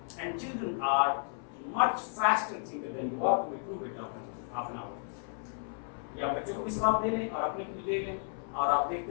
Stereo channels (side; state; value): right; silent; 56 dB below the other